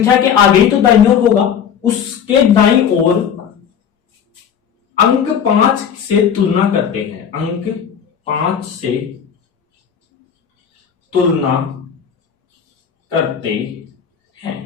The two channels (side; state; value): right; quieter; 7.9 dB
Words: के आगे ही तो दाईं ओर होगा, उसके दाईं ओर अंक 5 से तुलना करते हैं, अंक 5 से तुलना करते